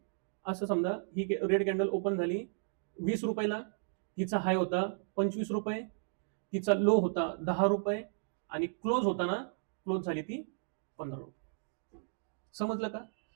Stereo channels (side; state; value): left; silent; digital silence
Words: असं समजा. ही रेड कॅन्डल ओपन झाली 20 रुपयाला, तिचा हाय होता 25 रुपये, तिचा लो होता 10 रुपये आणि क्लोज होता ना, क्लोज झाली ती 15 रुपये. समजलं का?